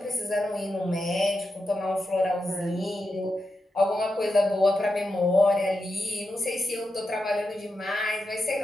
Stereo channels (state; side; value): normal; both; correlation 0.88